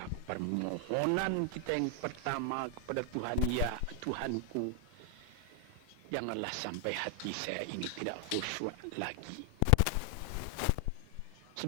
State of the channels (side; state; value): both; different; correlation 0.00